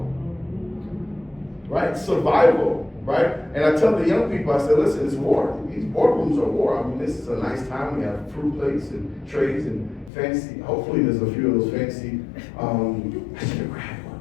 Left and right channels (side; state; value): right; drops out; at 10.1 s